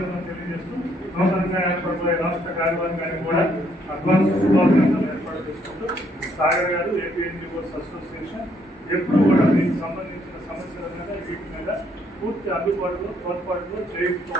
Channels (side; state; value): both; normal; correlation 0.70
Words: తెలియజేస్తూ నూతనంగా ఏర్పడిపోయే రాష్ట్ర కార్యవర్గానికి కూడా అడ్వాన్స్ శుభాకాంక్షలు ఏర్పాటు చేసుకుంటూ సాగర్ గారు ఏపీ ఎన్జిఓస్ అసోసియేషన్ ఎప్పుడు కూడా దీనికి సంబంధించిన సమస్యల మీద వీటి మీద పూర్తి అందుబాటులో తోడ్పాటులో